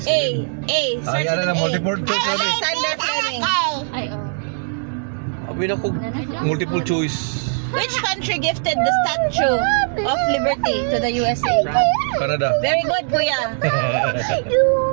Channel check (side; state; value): left; silent; digital silence